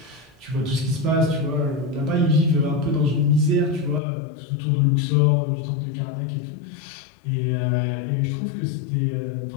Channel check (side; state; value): right; drops out; at 4.0 s